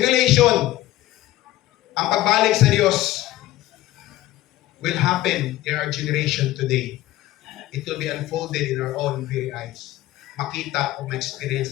ang pagbalik sa Diyos will happen in our generation today. It will be unfolded in our own very eyes. Makita o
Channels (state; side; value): quieter; right; 15.8 dB